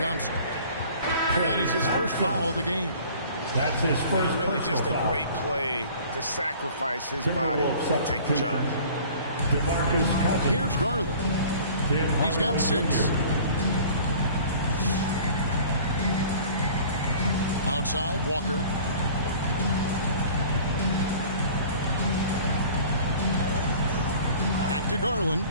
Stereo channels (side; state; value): both; inverted; correlation -0.46